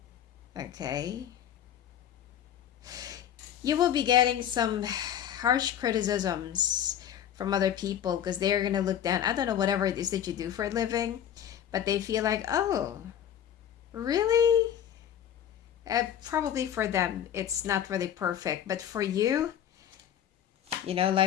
Okay. You will be getting some harsh criticisms from other people, because they're going to look down. I don't know, whatever it is that you do for a living, but they feel like, oh, really? Probably for them, it's not really perfect. But for you,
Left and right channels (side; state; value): right; quieter; 10.0 dB